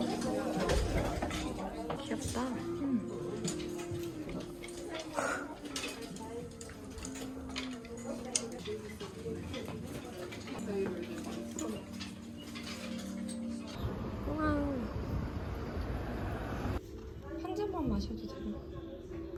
귀엽다. 우와. 한 잔만 마셔도 되나?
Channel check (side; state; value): both; identical; correlation 1.00